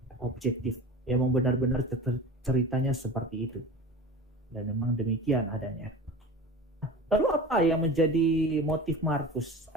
objektif. Memang benar-benar ceritanya seperti itu. Dan memang demikian adanya. Lalu apa yang menjadi motif Markus?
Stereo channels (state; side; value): normal; both; correlation 0.35